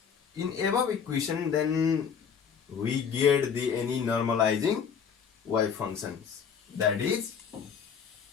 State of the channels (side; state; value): right; quieter; 7.0 dB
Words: in above equation, then we get the any normalizing wave functions. That is